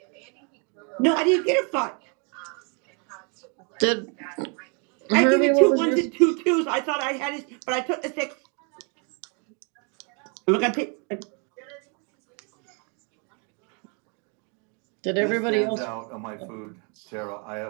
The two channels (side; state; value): left; quieter; 36.3 dB